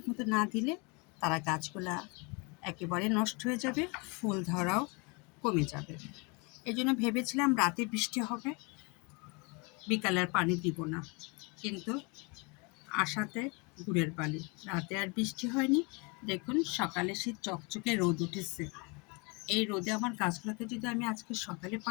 না দিলে তারা গাছগুলা একেবারে নষ্ট হয়ে যাবে, ফুল ধরাও কমে যাবে। এই জন্য ভেবেছিলাম রাতে বৃষ্টি হবে, বিকালে আর পানি দিব না, কিন্তু আশাতে গুড়ের পানি। রাতে আর বৃষ্টি হয়নি। দেখুন সকালে সেই চকচকে রোদ উঠেছে। এই রোদে আমার গাছগুলোকে যদি আমি আজকে সকালে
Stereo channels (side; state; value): right; quieter; 30.5 dB